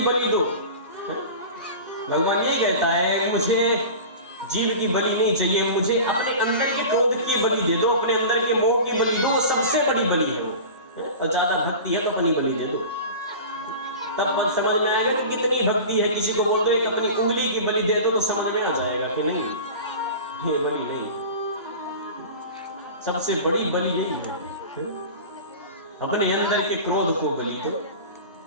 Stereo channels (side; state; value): both; inverted; correlation -0.34